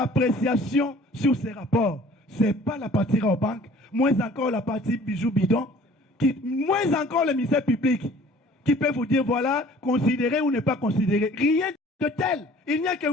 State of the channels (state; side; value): normal; both; correlation 0.51